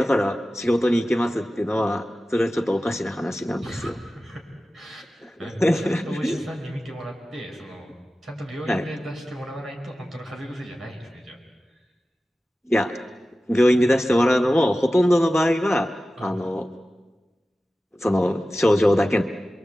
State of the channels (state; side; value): normal; both; correlation 0.95